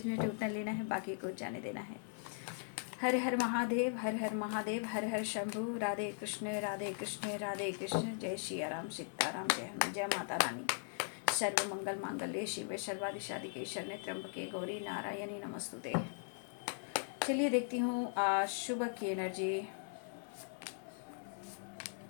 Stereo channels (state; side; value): silent; right; digital silence